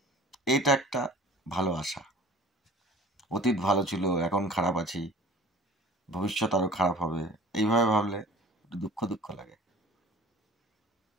এইটা একটা ভালো আশা। অতীত ভালো ছিল, এখন খারাপ আছি, ভবিষ্যৎ আরো খারাপ হবে, এইভাবে ভাবলে একটু দুঃখ দুঃখ লাগে।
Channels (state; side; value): normal; both; correlation 0.45